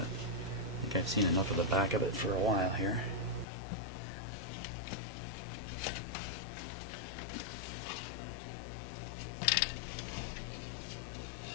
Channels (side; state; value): right; drops out; at 3.5 s